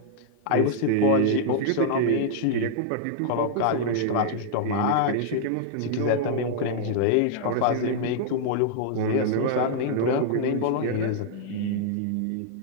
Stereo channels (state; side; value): different; both; correlation -0.01